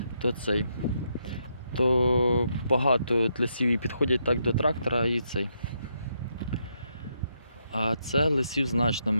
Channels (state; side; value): inverted; both; correlation -0.79